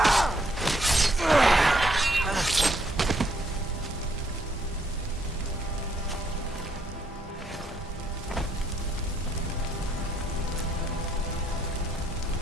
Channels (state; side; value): normal; both; correlation 0.71